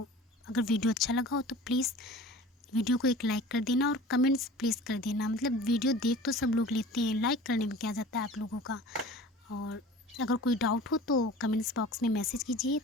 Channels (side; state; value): both; normal; correlation 0.41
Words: अगर वीडियो अच्छा लगा हो तो प्लीज़ वीडियो को एक लाइक कर देना और कमेंट्स प्लीज़ कर देना। मतलब वीडियो देख तो सब लोग लेते हैं, लाइक करने में क्या जाता है आप लोगों का। और अगर कोई डाउट हो तो कमेंट्स बॉक्स में मैसेज कीजिए।